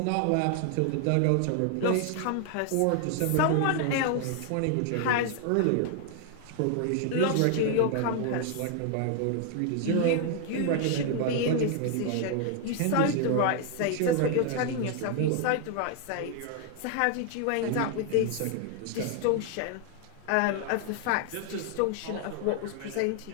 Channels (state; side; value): different; both; correlation 0.00